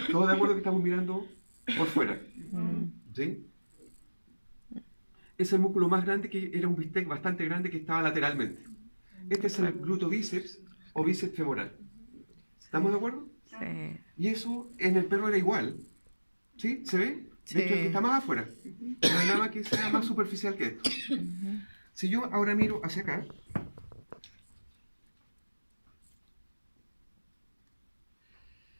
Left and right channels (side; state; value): both; inverted; correlation -1.00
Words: Todos de acuerdo que estamos mirando por fuera. ¿Sí? Es el músculo más grande, que era un bistec bastante grande que estaba lateralmente. Este es el gluto bíceps o bíceps femoral. ¿Estamos de acuerdo? Sí. Y eso en el perro era igual. ¿Sí? ¿Se ve? Sí. De hecho, el que está más afuera. No hay nada que sea más superficial que esto. Si yo ahora miro hacia acá,